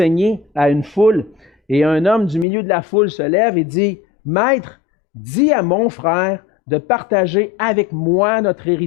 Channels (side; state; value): right; drops out; at 2.5 s